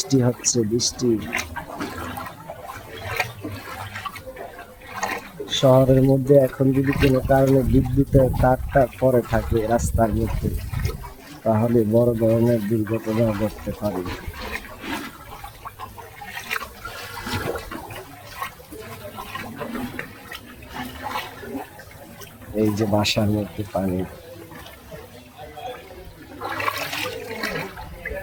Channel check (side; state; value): both; identical; correlation 1.00